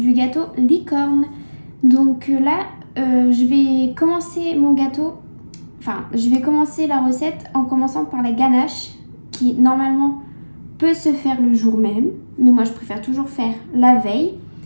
gâteau licorne. Donc là, je vais commencer mon gâteau, je vais commencer la recette en commençant par la ganache qui normalement peut se faire le jour même, mais moi je préfère toujours faire la veille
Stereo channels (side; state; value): both; inverted; correlation -1.00